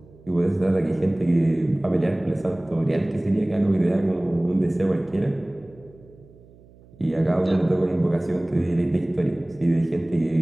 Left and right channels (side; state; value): right; noise; hum, 25 dB below the sound